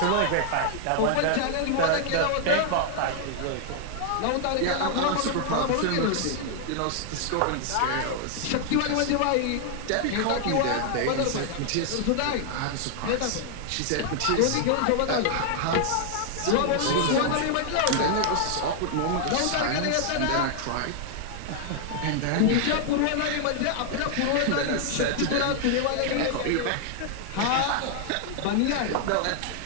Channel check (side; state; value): both; different; correlation 0.00